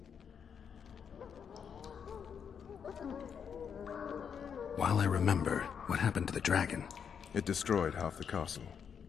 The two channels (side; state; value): right; quieter; 7.3 dB